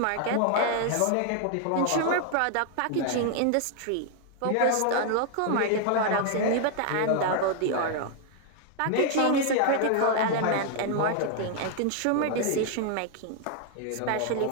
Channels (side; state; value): both; different; correlation 0.00